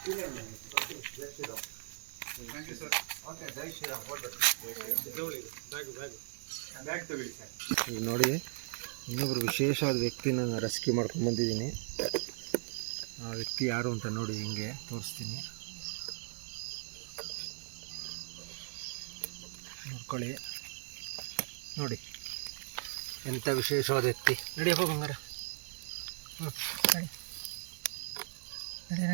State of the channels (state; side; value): silent; left; digital silence